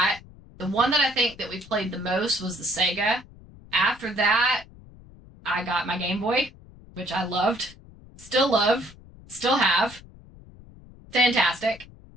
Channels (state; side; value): noise; left; rumble, 22 dB below the sound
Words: The one that I think that we played the most was the Sega. After that, I got my Game Boy, which I loved. Still love. Still have. Fantastic.